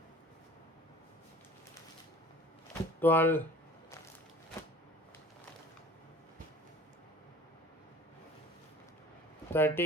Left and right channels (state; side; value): normal; both; correlation 0.44